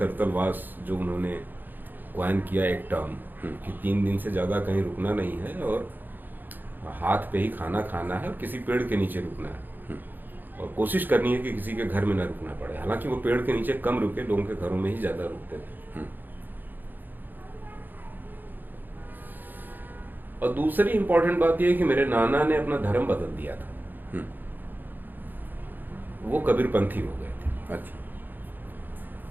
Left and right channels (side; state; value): left; late; 0.089 ms